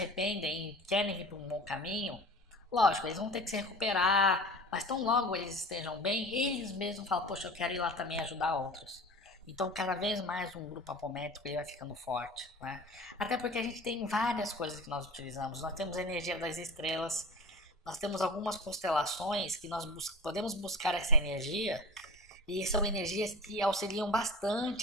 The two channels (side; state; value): both; normal; correlation 0.36